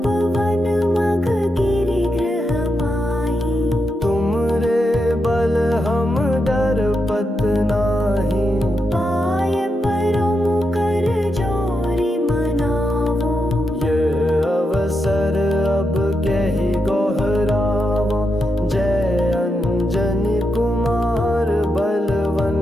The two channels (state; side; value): normal; both; correlation 0.85